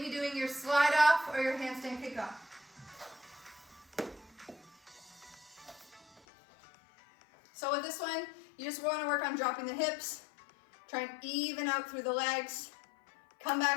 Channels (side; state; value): right; drops out; at 6.2 s